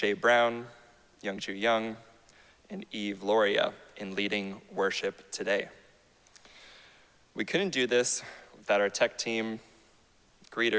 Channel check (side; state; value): both; identical; correlation 1.00